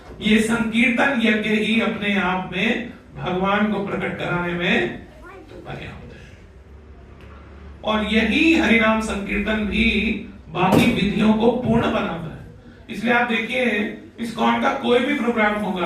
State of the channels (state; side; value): identical; both; correlation 1.00